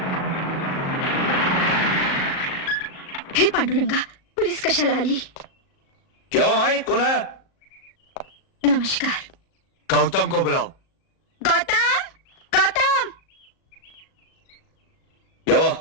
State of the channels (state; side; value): late; right; 37 ms